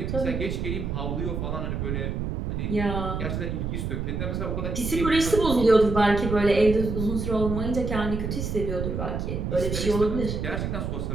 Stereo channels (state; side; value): noise; right; rumble, 3 dB below the sound